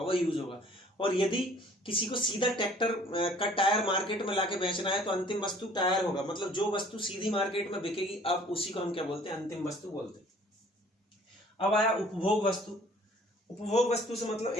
वो यूज होगा। और यदि किसी को सीधा ट्रैक्टर का टायर मार्केट में लाके बेचना है तो अंतिम वस्तु टायर होगा, मतलब जो वस्तु सीधी मार्केट में बिकेगी अब उसी को हम क्या बोलते हैं? अंतिम वस्तु बोलते हैं। अब आया उपभोग वस्तु। उपभोग वस्तु से मतलब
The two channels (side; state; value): both; normal; correlation 0.54